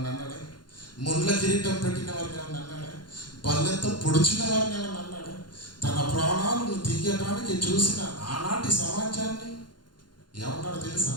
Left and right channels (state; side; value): late; right; 0.71 ms